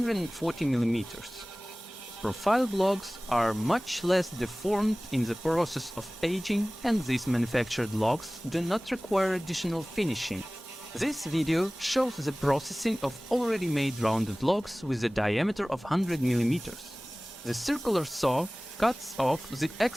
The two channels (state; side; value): normal; both; correlation 0.98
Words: millimeters. Profiled logs are much less deformed in the process of aging, and these manufactured logs do not require additional finishing. This video shows the processing of already made rounded logs with a diameter of 100 millimeters. The circular saw cuts off the